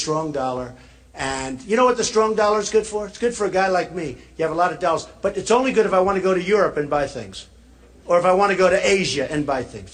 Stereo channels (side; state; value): both; identical; correlation 1.00